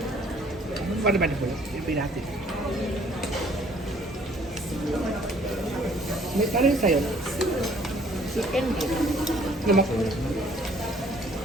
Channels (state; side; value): normal; both; correlation 0.59